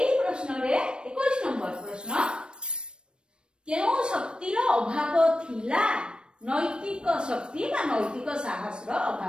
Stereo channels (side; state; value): left; late; 0.054 ms